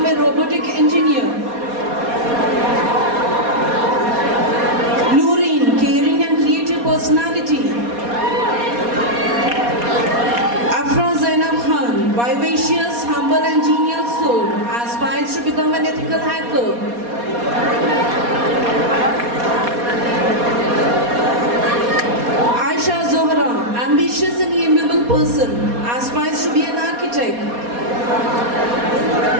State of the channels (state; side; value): late; left; 4.2 ms